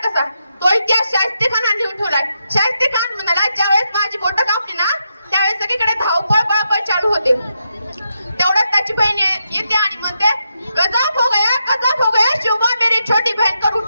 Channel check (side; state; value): both; inverted; correlation -0.83